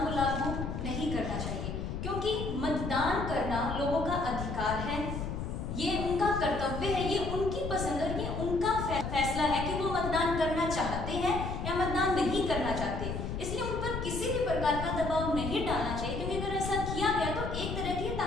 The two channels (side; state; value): left; noise; rumble, 4 dB below the sound